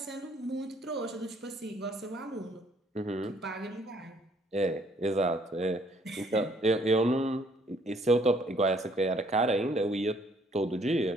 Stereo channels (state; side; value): normal; both; correlation 0.64